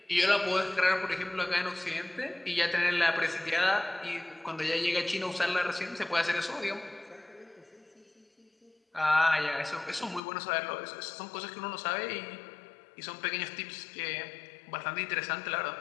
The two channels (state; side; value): drops out; right; at 10.2 s